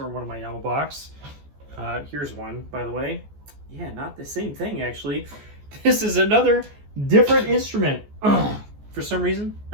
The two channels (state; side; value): late; left; 14 ms